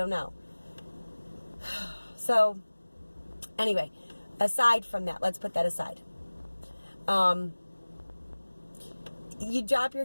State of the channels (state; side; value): inverted; both; correlation -1.00